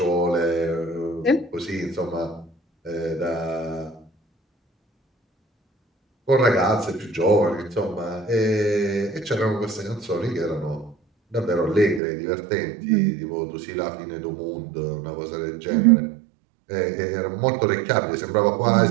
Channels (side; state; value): left; drops out; at 12.0 s